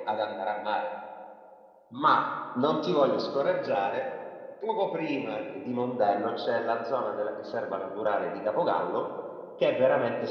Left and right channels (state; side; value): identical; both; correlation 1.00